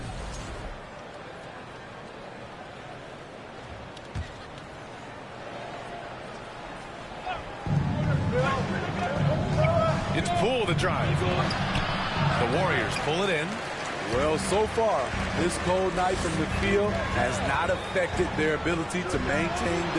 It's Poole the drive. The Warriors pull it in. Well, so far, this cold night from the field has not affected their ability to maintain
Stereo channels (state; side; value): identical; both; correlation 1.00